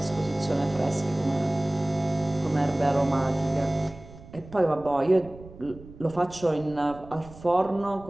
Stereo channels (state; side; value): noise; right; rumble, 19 dB below the sound